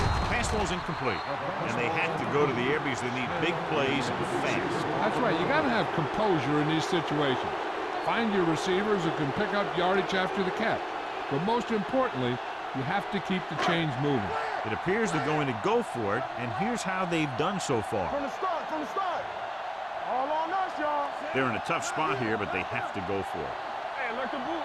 Pass ball's incomplete. And they have to go to the air because they need big plays fast. That's right. You got to have composure in these situations. Find your receivers who can pick up yardage after the catch. But most importantly, you have to keep the chains moving. It appears they're going to go for it, and here's how they've done so far. From the start, from the start. All on us, y'all. They're in a tough spot here, but they have to go for it. Hey, like the boot,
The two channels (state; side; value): identical; both; correlation 1.00